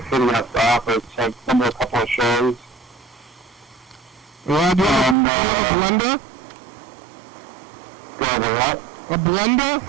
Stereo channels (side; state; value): left; drops out; at 5.2 s